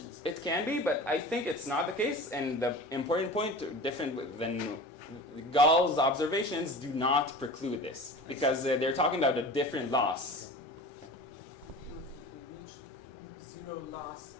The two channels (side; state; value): both; normal; correlation 0.36